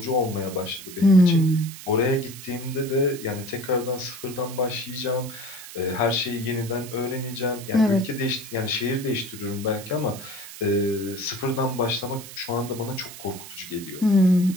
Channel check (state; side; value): noise; right; hiss, 14 dB below the sound